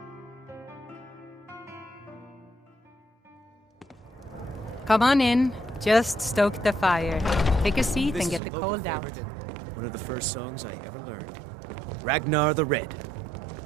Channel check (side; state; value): left; drops out; at 8.4 s